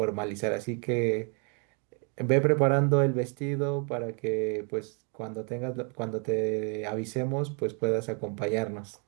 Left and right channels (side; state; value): left; quieter; 37.8 dB